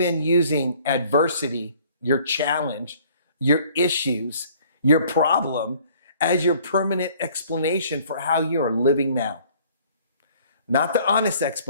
using adversity, your challenge, your issues, your problem as your permanent explanation for how you are living now? Not the honest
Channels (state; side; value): inverted; both; correlation -0.56